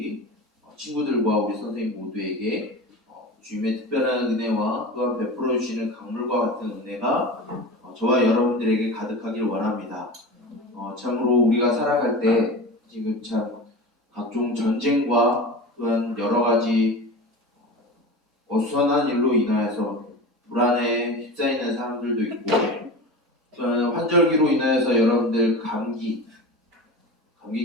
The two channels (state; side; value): normal; both; correlation 0.31